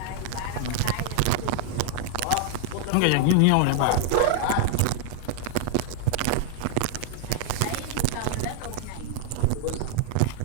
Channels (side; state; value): both; different; correlation -0.01